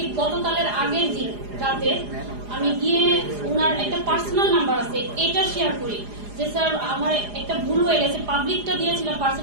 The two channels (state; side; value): late; left; 4.9 ms